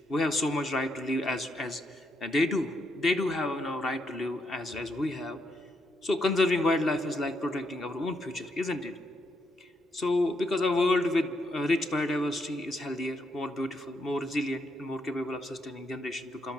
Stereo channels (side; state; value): both; normal; correlation 0.78